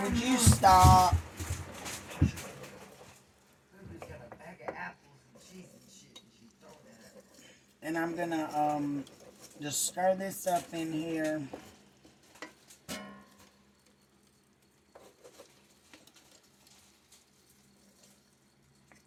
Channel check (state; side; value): identical; both; correlation 1.00